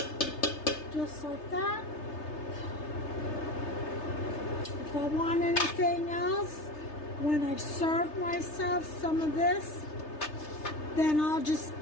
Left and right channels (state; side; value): late; right; 3.3 ms